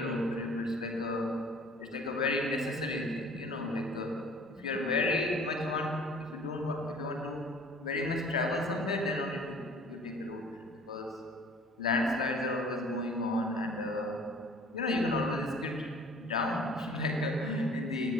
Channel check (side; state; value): both; normal; correlation 0.50